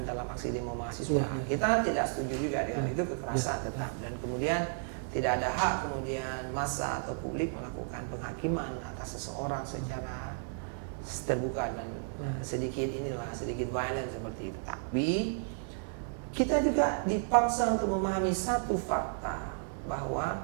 dalam aksi demo mahasiswa. Kita tidak setuju juga dengan itu, kekerasan tetap, dan kemudian tidak ada hak kemudian massa atau publik melakukan penghakiman atas seseorang secara terbuka dan sedikit violent seperti itu. Tapi kita juga dipaksa untuk memahami satu fakta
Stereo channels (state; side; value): silent; left; digital silence